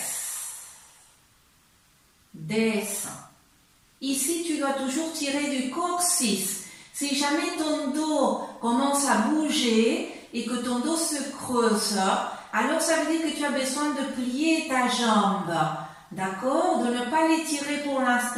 Descends. Ici, tu dois toujours tirer du coccyx. Si jamais ton dos commence à bouger et que ton dos se creuse, alors ça veut dire que tu as besoin de plier ta jambe. D'accord? De ne pas l'étirer pour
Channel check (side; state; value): both; identical; correlation 1.00